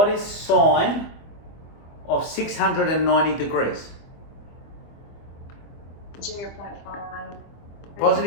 is sine of 690 degrees? 0.5.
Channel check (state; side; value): late; right; 24 ms